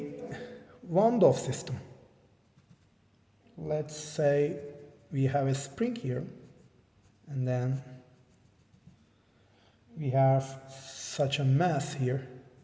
Van system. Let's say we have a spring here, and then we have such a mass here.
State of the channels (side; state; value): both; identical; correlation 1.00